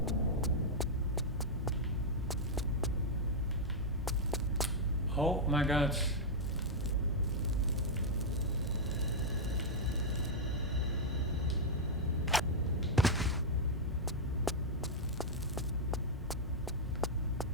Oh my god.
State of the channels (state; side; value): normal; both; correlation -0.05